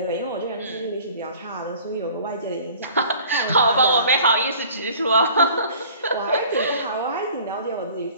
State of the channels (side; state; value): both; inverted; correlation -0.49